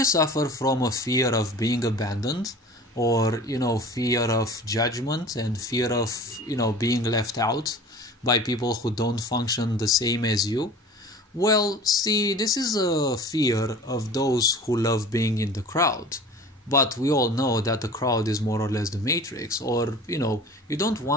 suffer from a fear of being abandoned, or fear of judgment and fear of being left out by people who don't function the same as you? Well, see, this is a fear of those who love being in the crowd. But we all know that the crowd is more or less the matrix, or you don't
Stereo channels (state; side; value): normal; both; correlation 0.41